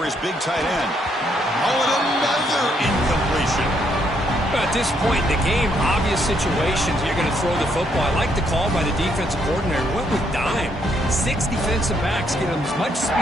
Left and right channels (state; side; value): normal; both; correlation 0.73